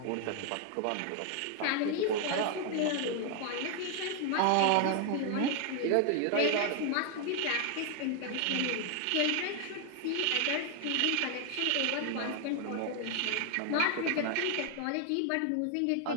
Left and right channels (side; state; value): both; different; correlation 0.00